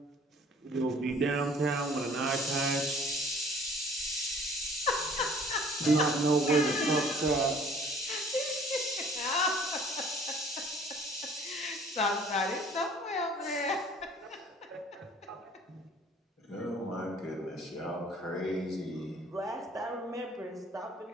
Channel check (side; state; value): both; normal; correlation 0.53